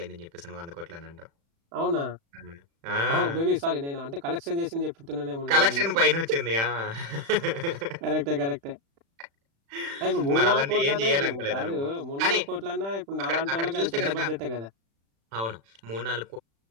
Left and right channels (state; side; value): late; left; 36 ms